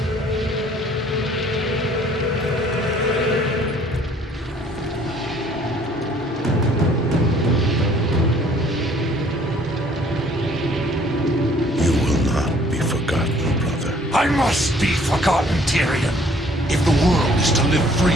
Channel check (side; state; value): both; normal; correlation 0.58